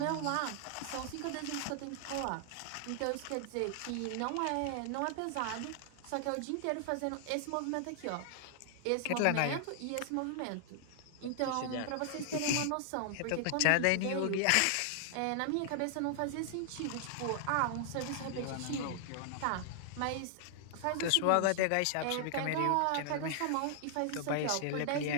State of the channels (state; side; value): different; both; correlation 0.00